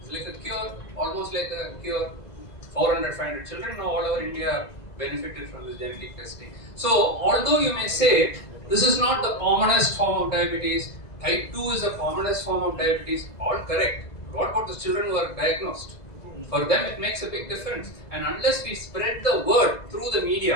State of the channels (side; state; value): right; late; 2.0 ms